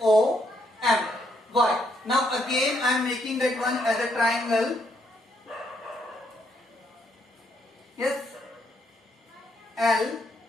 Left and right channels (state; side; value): normal; both; correlation 0.74